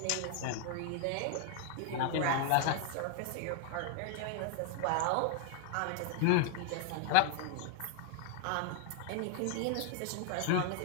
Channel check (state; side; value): different; both; correlation 0.00